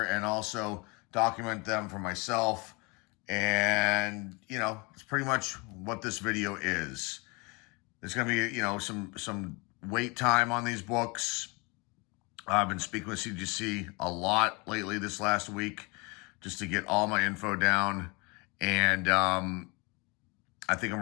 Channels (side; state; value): right; quieter; 28.6 dB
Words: and also document them for myself. And, you know, it's pretty much what this video is. There's going to be, you know, some wait time on these books. I've been speaking with CGC a lot lately this last week just to get all my info down. And I think